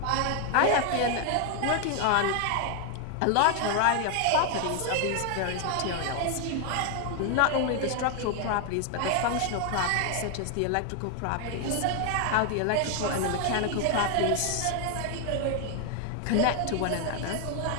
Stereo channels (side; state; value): both; different; correlation 0.00